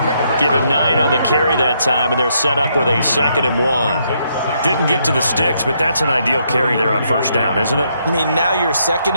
Give him 9 on the carry that time, and they're set up with a 2nd and 1. Didn't get to the sticks, but that's an ideal carry there on first down, isn't it? I mean, now you're 2nd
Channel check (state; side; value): inverted; both; correlation -0.74